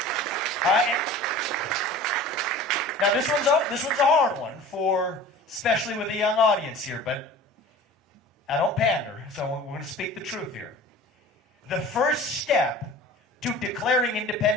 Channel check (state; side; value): normal; both; correlation 0.41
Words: All right? Now this one's a hard one for, especially with a young audience here, but I don't pander, so we're going to speak the truth here. The first step to declaring